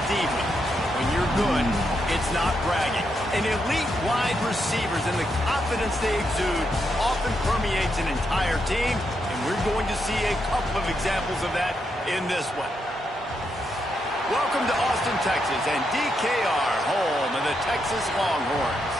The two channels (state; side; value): normal; both; correlation 0.81